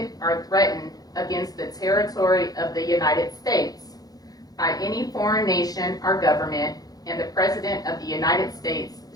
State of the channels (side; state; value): right; late; 0.18 ms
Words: or threatened against the territory of the United States by any foreign nation or government, and the President of the United States